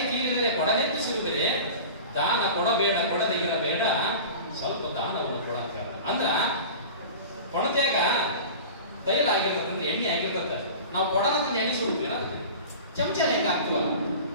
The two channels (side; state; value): both; inverted; correlation -0.36